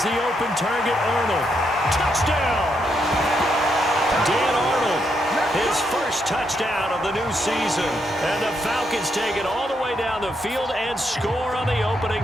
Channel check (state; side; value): normal; both; correlation 0.79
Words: the open target, Arnold. Touchdown! Dan Arnold, his first touchdown of the new season. And the Falcons take it all the way down the field and score on the opening